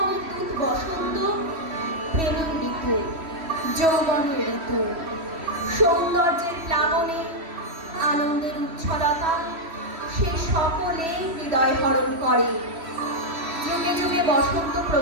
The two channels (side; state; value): left; late; 3.1 ms